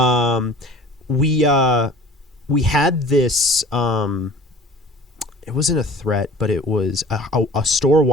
we had this. It wasn't a threat, but it was a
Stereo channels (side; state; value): both; normal; correlation 0.45